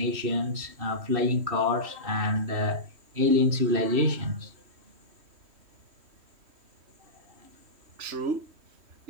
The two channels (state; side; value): late; left; 3.1 ms